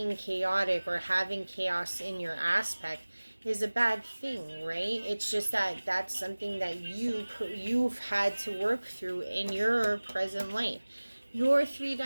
chaotic or having chaos in your aspect is a bad thing, right? It's just that that's something that you've had to work through in your present life. Your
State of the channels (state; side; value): inverted; both; correlation -1.00